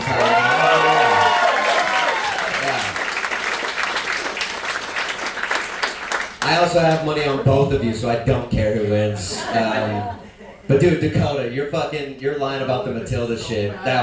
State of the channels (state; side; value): identical; both; correlation 1.00